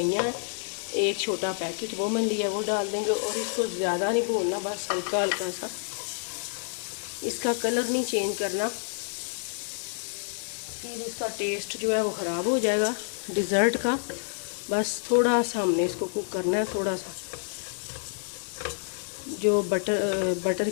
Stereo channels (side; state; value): right; silent; digital silence